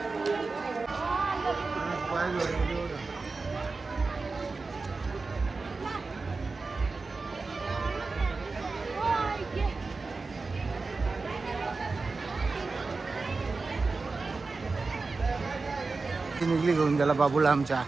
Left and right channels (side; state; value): left; quieter; 4.0 dB